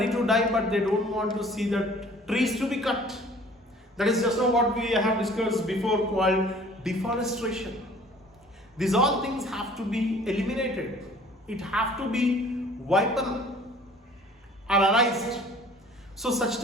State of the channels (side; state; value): both; normal; correlation 0.51